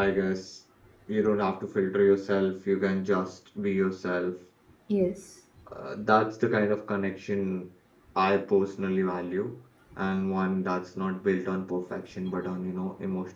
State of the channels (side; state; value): both; identical; correlation 1.00